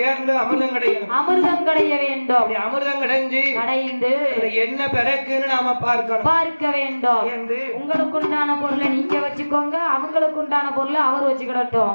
அமிர்தம் கடைய வேண்டும். அமிர்தம் கடைந்து என்ன பிறக்குன்னு நாம பார்க்க வேண்டும் என்று உங்களுக்கு உண்டான பொருளை நீங்க வச்சுக்கோங்க, அவங்களுக்கு உண்டான பொருளை அவர் வச்சுக்கிடட்டும்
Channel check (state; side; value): inverted; both; correlation -1.00